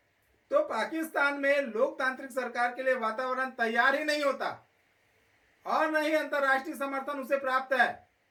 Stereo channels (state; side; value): identical; both; correlation 1.00